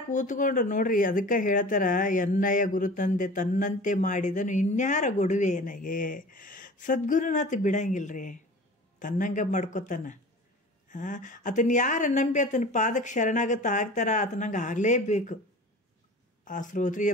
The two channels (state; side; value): normal; both; correlation 0.40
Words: ಕೂತ್ಕೊಂಡು ನೋಡ್ರಿ, ಅದಕ್ಕೆ ಹೇಳ್ತಾರ, ಎನ್ನಯ ಗುರು ತಂದೆ ತನ್ನಂತೆ ಮಾಡಿದನು ಇನ್ಯಾರ ಗೊಡುವೆ ಏನಾಗೆ. ಸದ್ಗುರುನಾಥ ಬಿಡಂಗಿಲ್ರಿ, ತನ್ನಂಗೆ ಮಾಡ್ಕೊತಾನ. ಆತನ ಯಾರು ನಂಬಿ ಆತನ ಪಾದಕ್ಕೆ ಶರಣಾಗತ ಆಗ್ತಾರ, ಆತನಂಗೆ ಆಗಲೇಬೇಕು. ಆ ಶ್ರೋತ್ರಿಯ